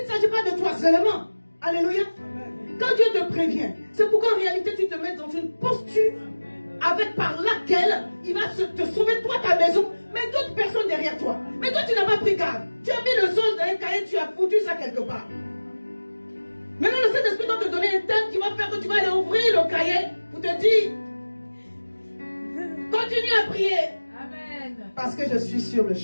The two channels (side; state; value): both; inverted; correlation -1.00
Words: ne s'agit pas de toi seulement. Alléluia. Quand Dieu te prévient, c'est pour qu'en réalité tu te mettes dans une posture par laquelle il va te sauver toi, ta maison, mais d'autres personnes derrière toi. Mais toi tu n'as pas pris garde. Tu as mis le songe dans un cahier, tu as foutu ça quelque part. Maintenant le Saint-Esprit doit te donner un thème qui va faire que tu vas aller ouvrir le cahier pour te dire, continue à prier. Amen. Parce que je suis sur le